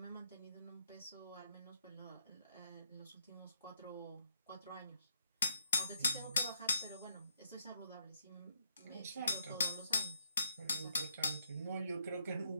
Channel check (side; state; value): both; inverted; correlation -0.74